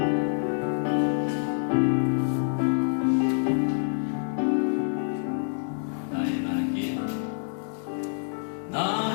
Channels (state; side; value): silent; right; 60 dB below the other